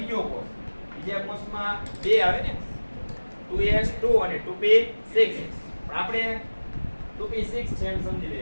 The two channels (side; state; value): both; inverted; correlation -1.00